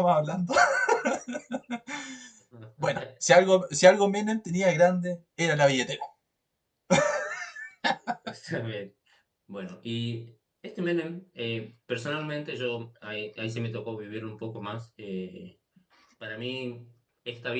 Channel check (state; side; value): identical; both; correlation 1.00